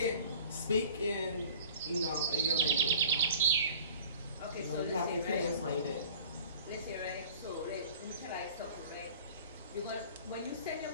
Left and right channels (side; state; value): both; inverted; correlation -0.47